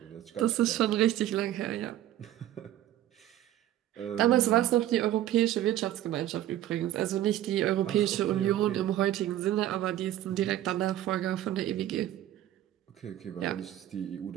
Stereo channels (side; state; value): left; quieter; 13.0 dB